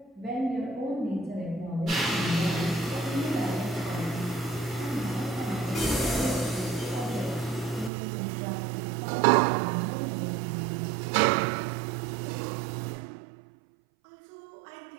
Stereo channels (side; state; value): left; drops out; at 7.9 s